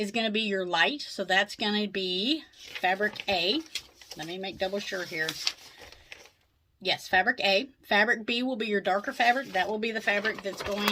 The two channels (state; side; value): identical; both; correlation 1.00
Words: going to be your light. So that's going to be fabric A. Let me make double sure here. Yes, fabric A. Fabric B will be your darker fabric. That will be the fabric that's